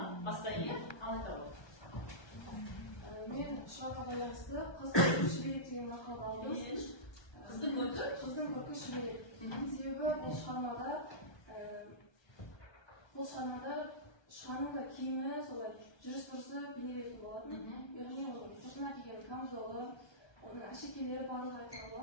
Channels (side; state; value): right; late; 1.2 ms